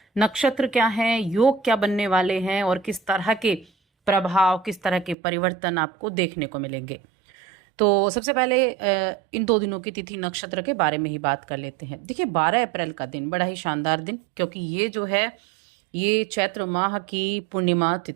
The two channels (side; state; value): left; drops out; at 5.2 s